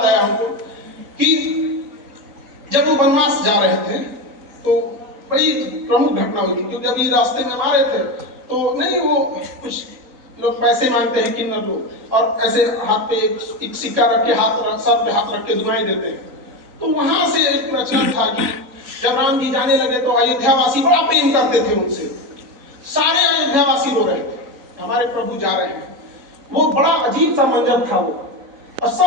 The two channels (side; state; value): left; late; 3.9 ms